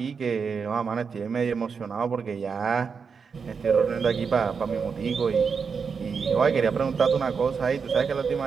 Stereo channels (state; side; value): quieter; left; 5.7 dB